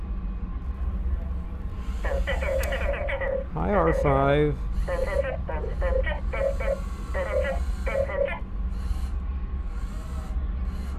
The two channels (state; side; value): identical; both; correlation 1.00